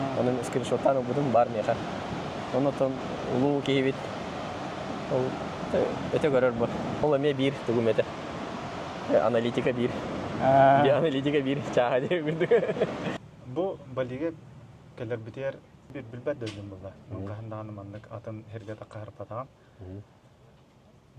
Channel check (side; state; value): both; identical; correlation 1.00